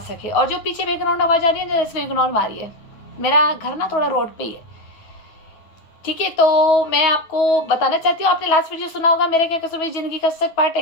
सके। और जो पीछे बैकग्राउंड आवाज आ रही है, जरा इसको इग्नोर मारिए। मेरा घर ना थोड़ा रोड पे ही है। ठीक है, तो मैं आपको बताना चाहती हूँ, आपने लास्ट वीडियो सुना होगा मेरे क्या कसूर मेरी जिंदगी का सच पार्ट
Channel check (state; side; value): late; right; 9.1 ms